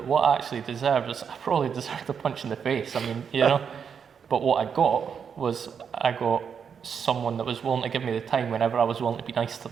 what I actually deserved was, I probably deserved a punch in the face. But what I got someone that was willing to give me the time whenever I was willing to be nice to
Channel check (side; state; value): left; quieter; 7.0 dB